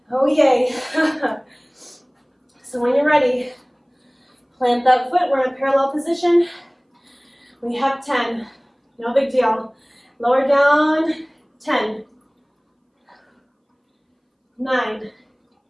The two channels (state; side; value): identical; both; correlation 1.00